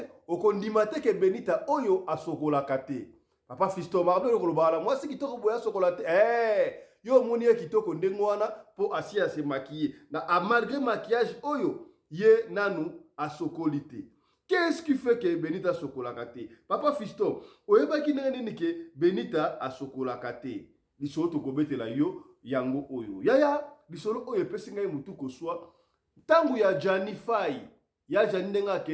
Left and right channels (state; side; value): identical; both; correlation 1.00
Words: okondima te ke Benita oyo asokolaka te. Papa Fiston Mardo yo kolobala mwasi kitoko boya sokola te. Yo moni ye kitoko ndengo wana po asi ya se maquiller. Na malgré maquillage oyo ye nanu asokoli te. Qu'est-ce qui fait que Benita sokolaka te? Papa Fiston, oyebaki nini ke Benita asokolaka te? Lisolo tokobetela yo yango oyo. Yaya, lisolo oyo epesi ngai mutu koswa. Tangu ya Jani Fai, ya Jani ndenga